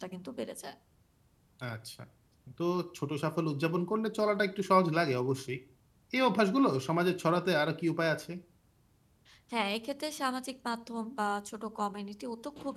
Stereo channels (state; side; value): identical; both; correlation 1.00